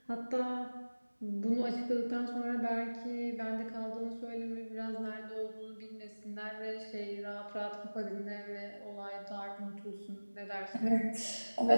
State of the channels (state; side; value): inverted; both; correlation -1.00